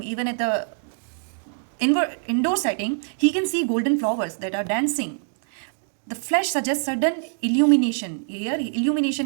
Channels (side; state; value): left; silent; 62 dB below the other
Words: even at the indoor setting, he can see golden flowers that are dancing. The flesh suggests sudden illumination. Here, illumination